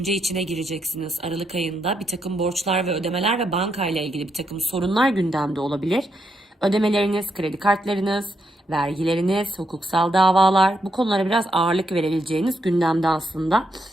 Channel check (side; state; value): both; normal; correlation 0.80